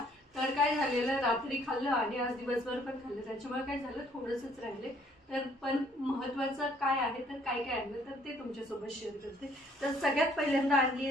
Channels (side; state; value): both; normal; correlation 0.62